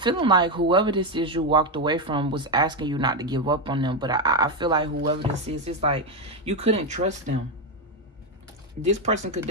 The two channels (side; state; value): both; normal; correlation 0.08